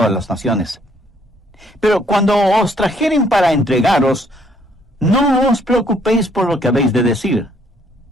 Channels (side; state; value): both; normal; correlation 0.66